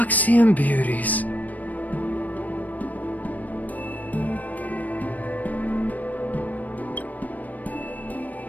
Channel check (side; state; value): right; late; 0.078 ms